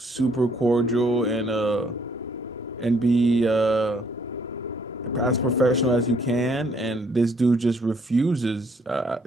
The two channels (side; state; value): both; normal; correlation 0.66